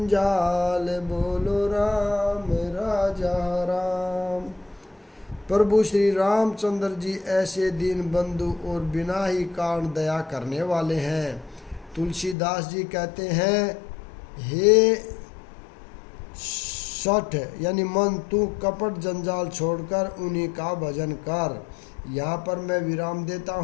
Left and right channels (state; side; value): drops out; right; at 12.4 s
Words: बोलो राम राजा राम। प्रभु श्री रामचंद्र जी ऐसे दीन बंधु और बिना ही कारण दया करने वाले हैं। तुलसीदास जी कहते हैं, हे सठ यानी मन, तू कपट जंजाल छोड़कर उन्हीं का भजन कर। यहाँ पर मैं विराम देता